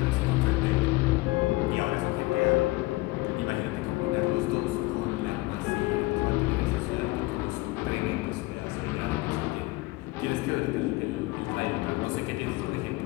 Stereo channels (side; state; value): right; quieter; 21.5 dB